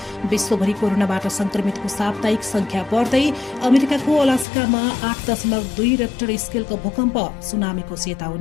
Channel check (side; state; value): right; drops out; at 4.5 s